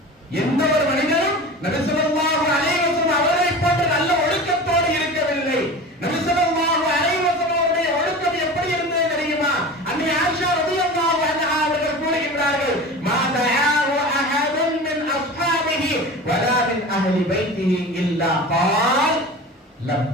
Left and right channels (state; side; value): normal; both; correlation 0.34